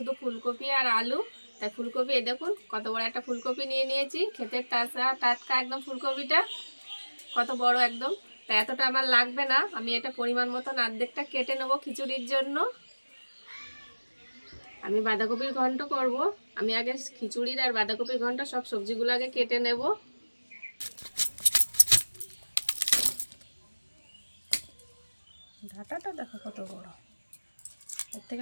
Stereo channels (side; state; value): both; inverted; correlation -1.00